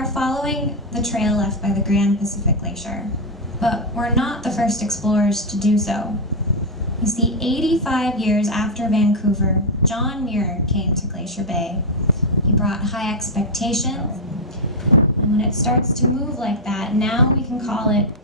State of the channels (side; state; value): both; normal; correlation 0.01